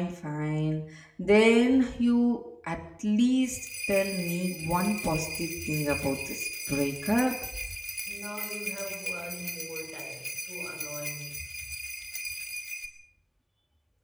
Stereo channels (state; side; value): identical; both; correlation 1.00